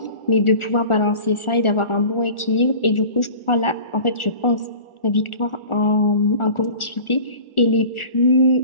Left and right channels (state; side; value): late; right; 1.4 ms